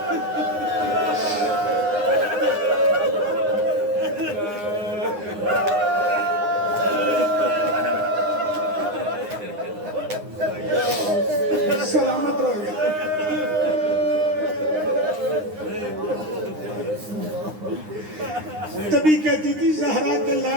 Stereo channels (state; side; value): late; left; 9.7 ms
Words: سلامت رہو گیا. تبھی کہتی تھی زہرا کے